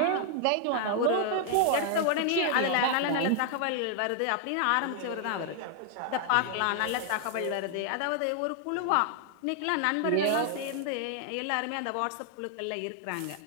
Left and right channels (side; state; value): both; different; correlation 0.00